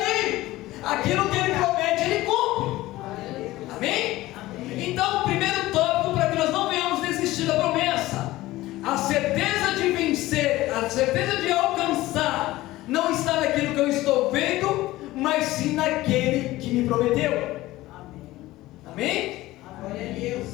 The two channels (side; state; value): right; quieter; 17.4 dB